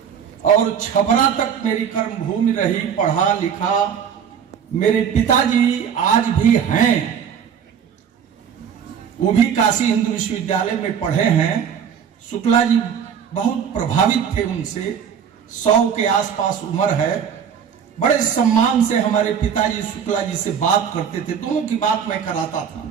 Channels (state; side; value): quieter; left; 7.8 dB